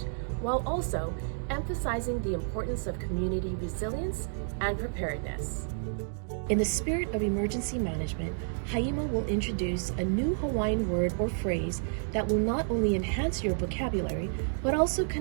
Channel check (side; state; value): left; silent; digital silence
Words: while also emphasizing the importance of community resilience and preparedness. In the spirit of emergency management, Haima will introduce a new Hawaiian word or phrase that will not only enhance your vocabulary, but also